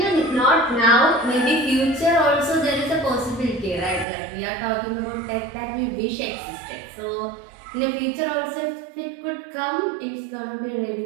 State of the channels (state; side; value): drops out; left; at 4.0 s